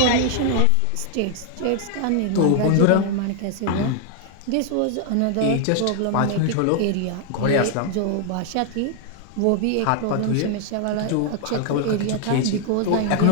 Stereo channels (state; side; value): different; both; correlation 0.00